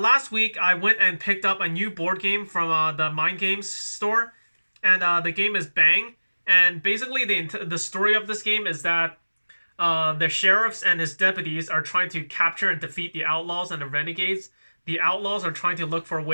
week I went and picked up a new board game from the Mind Games store, and the game is Bang. And basically the story of this game is that the sheriffs and his deputies are trying to capture and defeat the outlaws and the renegades. The outlaws are trying to look for a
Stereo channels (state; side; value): inverted; both; correlation -1.00